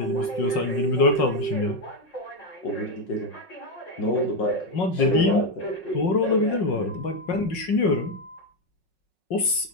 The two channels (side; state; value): right; late; 5.5 ms